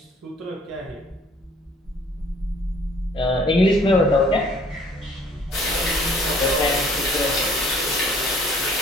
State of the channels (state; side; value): normal; both; correlation 0.57